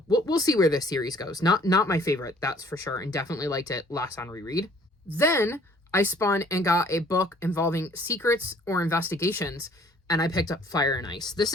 we'll see where this series goes. Not my favorite, that's for sure, and definitely liked it less on reread. Then I spun and got a book involving secrets or investigations, and I picked up Fire and Ice. This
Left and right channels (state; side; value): normal; both; correlation 0.57